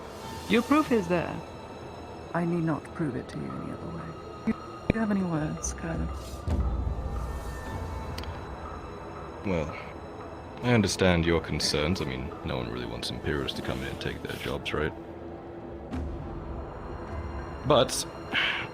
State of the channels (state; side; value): identical; both; correlation 1.00